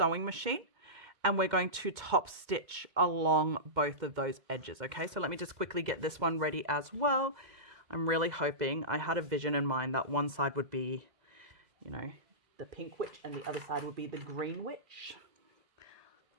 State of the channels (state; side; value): late; left; 2.2 ms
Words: machine and we're going to top stitch along both of those edges, okay? So let me just quickly get this one ready as well. I'm really hoping, I had a vision in mind that one side would be, you know, the pink witch and the other side would be the green witch.